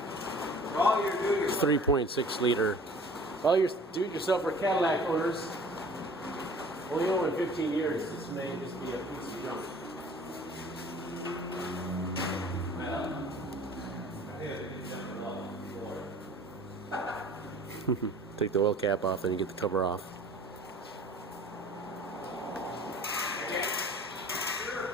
3.6 liter. All your do-it-yourself or Cadillac owners, only own in 15 years, this may just be a piece of junk. Take the oil cap off and you get the cover off.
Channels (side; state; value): both; normal; correlation 0.48